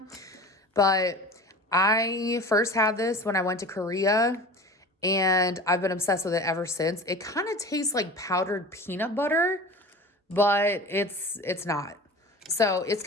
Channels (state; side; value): normal; both; correlation 0.36